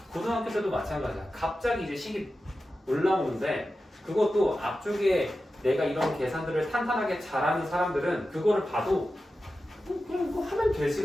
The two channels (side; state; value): both; normal; correlation 0.93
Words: 고등학교 때도 마찬가지야. 갑자기 이제 식이 올라오는데 그것도 앞쪽에 내가 이런 계산들을 탄탄하게 잘하는 사람들은 그거를 봐도 그냥 이거 하면